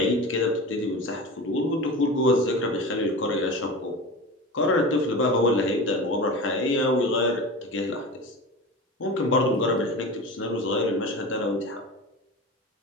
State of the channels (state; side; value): normal; both; correlation 0.30